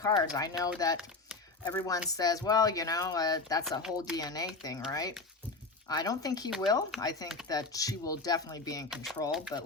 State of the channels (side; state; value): right; quieter; 3.7 dB